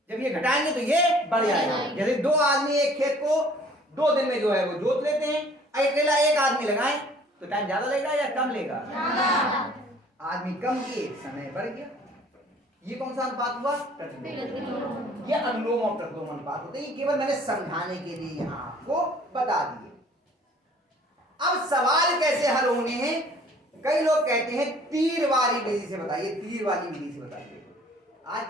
जब ये घटाएंगे तो ये बढ़ जाएगा। जैसे 2 आदमी एक खेत को 2 दिन में जो है वो जोत लेते हैं, अकेला एक आदमी लगाएं तो टाइम ज्यादा लगेगा या कम लेगा? आदमी कम किए, समय बढ़ गया। ये कौन सा अनुपात हुआ? प्रतिलोम। ये अनुलोम और प्रतिलोम अनुपात होते हैं। ये केवल मैंने समझाने के लिए यहाँ आपको बता दिए। अब सवाल कैसे हल होने हैं? कई लोग कहते हैं तीर वाली विधि से बताइए, तीर वाली विधि से बताइए। आज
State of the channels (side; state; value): both; normal; correlation 0.54